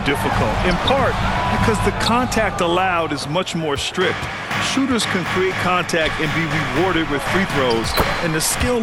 In part because the contact allowed is much more strict. Shooters can create contact and be rewarded with free throws. And the skill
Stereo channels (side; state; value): both; identical; correlation 1.00